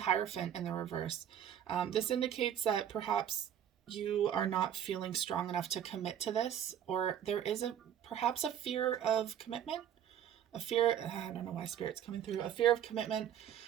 in the reverse. This indicates that perhaps you are not feeling strong enough to commit to this, or there is perhaps a fear of commitment. I don't know why Spirit's coming through. A fear of commitment.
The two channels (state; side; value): quieter; left; 9.9 dB